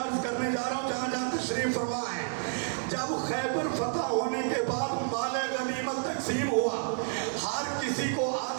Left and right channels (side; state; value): left; silent; digital silence